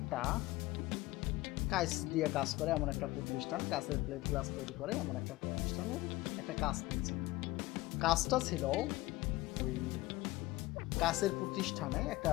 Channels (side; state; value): right; quieter; 19.1 dB